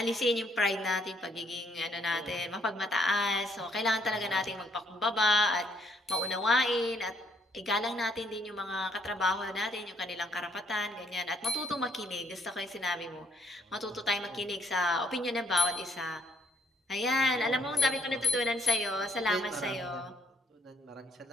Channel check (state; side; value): normal; both; correlation 0.69